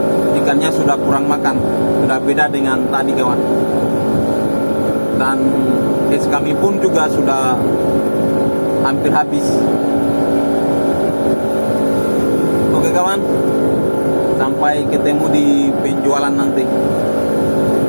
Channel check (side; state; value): both; inverted; correlation -1.00